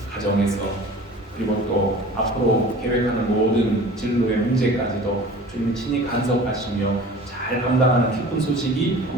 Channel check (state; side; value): normal; both; correlation 0.42